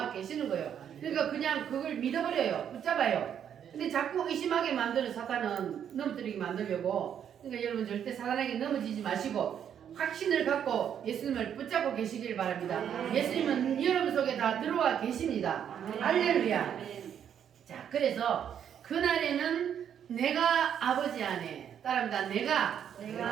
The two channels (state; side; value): quieter; left; 8.9 dB